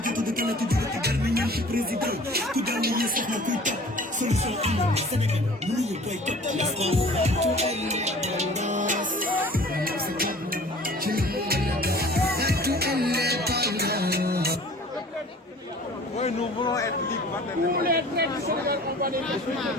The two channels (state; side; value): normal; both; correlation 0.47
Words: jiitu di tànn ci jóge ci garmi ñaan ci président ku daal ni ñi soxna kuy topp solution am Sénégal mënuñu boycott la France. Oui, nous voulons être libres. Nous voulons être